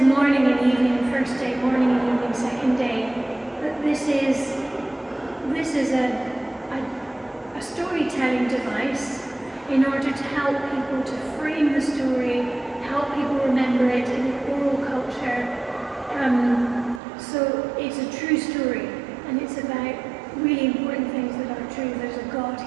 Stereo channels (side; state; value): left; drops out; at 17.0 s